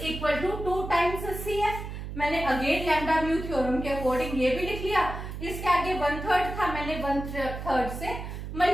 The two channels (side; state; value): right; noise; hum, 8 dB below the sound